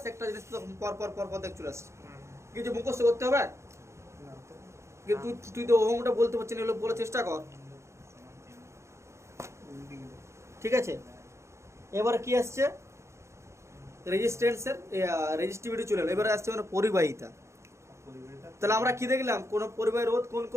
একটা জিনিস তো পর পর পর পর দেখ চলে আসছে। কিছু মুখস্থ করতে হবে। কিন্তু তুই তো ওহমটা বলতে পারছিস না, এগুলো বলার চেষ্টা কর। ঠিক আছে? এবারে কি আসছে? রেজিস্ট্যান্সের রেজিস্টিভিটি চলে এলো। এবারে আসছে মানে পরিবাহিতা। তাহলে আমরা কি দেখলাম? কোন পরিবাহী রোধ কোন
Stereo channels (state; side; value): late; left; 0.14 ms